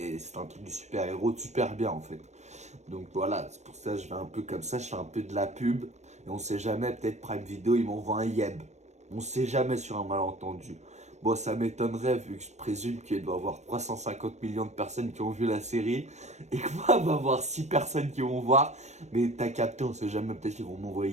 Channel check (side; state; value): left; late; 0.33 ms